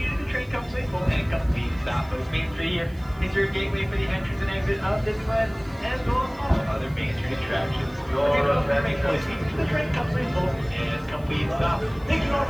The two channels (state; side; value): noise; right; hiss, 28 dB below the sound